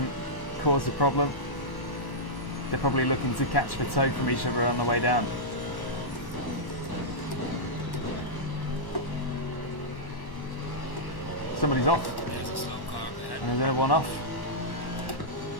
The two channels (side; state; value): right; late; 1.1 ms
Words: cause a problem. They're probably looking to catch the toe from each other on the way down. Somebody's off. There's a slow car ahead. And there's another one off.